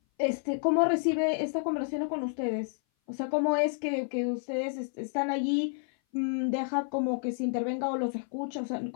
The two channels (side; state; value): right; silent; 57 dB below the other